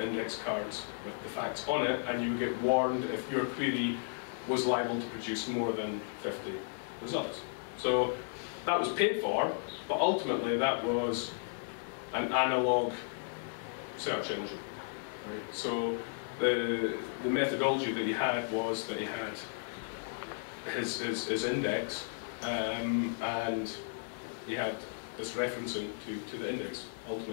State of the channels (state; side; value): silent; right; digital silence